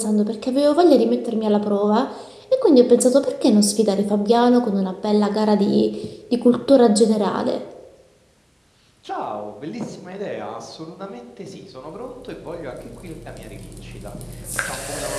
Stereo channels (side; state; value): both; identical; correlation 1.00